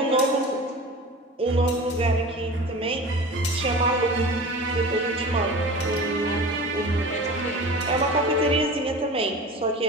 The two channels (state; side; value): normal; both; correlation 0.35